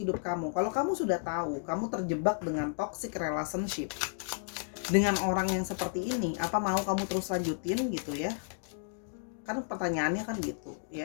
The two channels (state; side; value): silent; right; digital silence